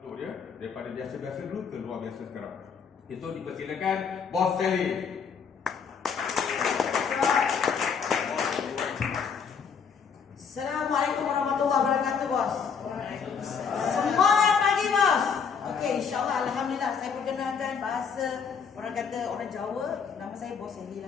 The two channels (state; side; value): quieter; right; 6.4 dB